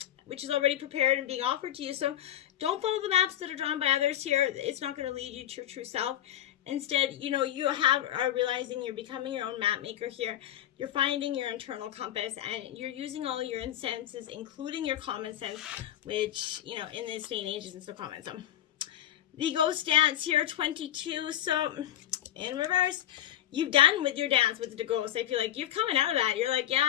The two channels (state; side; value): quieter; right; 12.1 dB